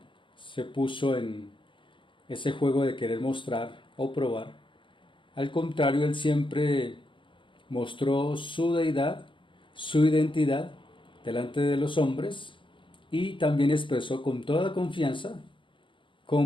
se puso en ese juego de querer mostrar o probar. Al contrario, Él siempre mostró su deidad, su identidad delante de los hombres, y también expresó con toda confianza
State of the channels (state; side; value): late; right; 0.25 ms